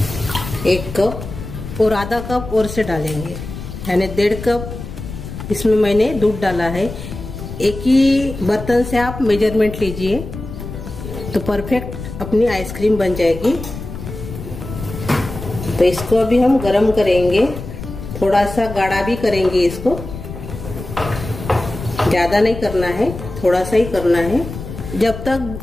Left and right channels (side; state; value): left; noise; rumble, 10 dB below the sound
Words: 1 कप और आधा कप और से डालेंगे, यानी 1.5 कप इसमें मैंने दूध डाला है। एक ही बर्तन से आप मेजरमेंट लीजिए तो परफेक्ट अपनी आइसक्रीम बन जाएगी। तो इसको अभी हम गरम करेंगे, थोड़ा सा गाढ़ा भी करेंगे। इसको ज्यादा नहीं करना है, थोड़ा सा ही करना है। जब तक